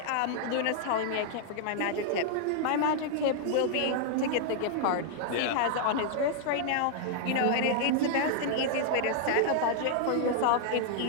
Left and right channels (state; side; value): different; both; correlation -0.01